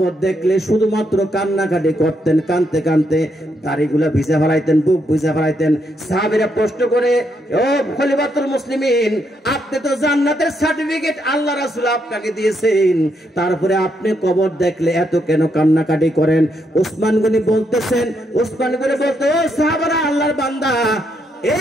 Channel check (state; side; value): normal; both; correlation 0.77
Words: দেখলে শুধুমাত্র কান্নাকাটি করতেন, কানতে কানতে দাড়িগুলা ভিজা ফেলাইতেন, বুক ভিজা ফেলাইতেন। সাহাবীরা প্রশ্ন করে, ও খলিফাতুল মুসলিমিন, আপনি তো জান্নাতের সার্টিফিকেট আল্লাহ রাসূল আপনাকে দিয়েছেন, তারপরে আপনি কবর দেখলে এত কেন কান্নাকাটি করেন? ওসমান গনি বলতেছেন, ওসমান গনি বলতে, ও সাহাবারা, আল্লাহর বান্দা,